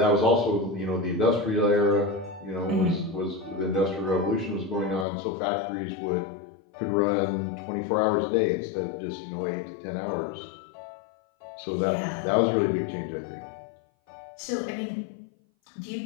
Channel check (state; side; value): drops out; right; at 5.1 s